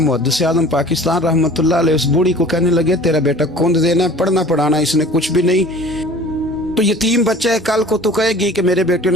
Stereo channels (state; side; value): normal; both; correlation 0.46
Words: आज़म पाकिस्तान रहमतुल्लाह अलैह उस बूढ़ी को कहने लगे तेरा बेटा कौन देना है, पढ़ना पढ़ाना इसने कुछ भी नहीं, तो यतीम बच्चा है, कल को तो कहेगी कि मेरे बेटे